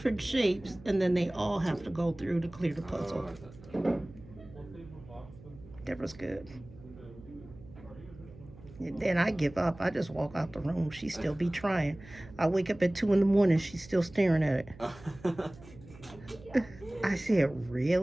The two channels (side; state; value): right; noise; hum, 20 dB below the sound